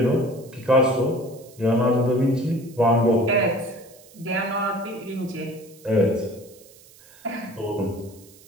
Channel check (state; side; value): noise; right; hiss, 24 dB below the sound